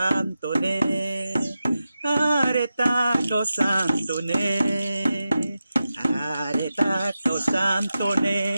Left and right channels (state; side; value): inverted; both; correlation -0.91